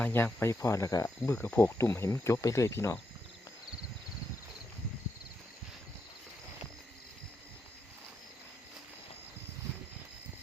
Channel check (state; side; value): normal; both; correlation 0.83